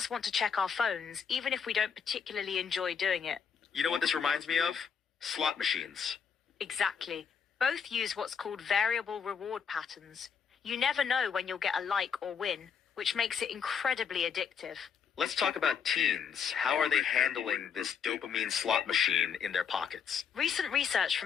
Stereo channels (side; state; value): right; quieter; 6.9 dB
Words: want to check our phones, even if we don't particularly enjoy doing it. You know what this reminds me of? Slot machines. Exactly. Both use what's called variable reward patterns. You never know when you'll get a like or win, which makes it incredibly addictive. Let's talk about teens. How are they handling this dopamine slot machine in their pockets? Recent research